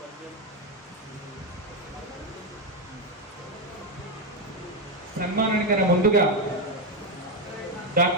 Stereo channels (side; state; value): both; normal; correlation 0.08